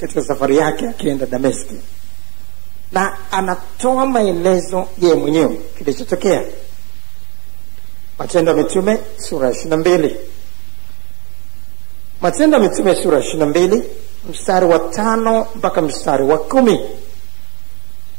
safari yake akienda Dameski, na anatoa maelezo yeye mwenyewe kilichotokea. Matendo ya Mitume sura 22. Matendo ya Mitume sura 22 mstari wa 5 mpaka mstari wa 10.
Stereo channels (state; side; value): quieter; left; 31.3 dB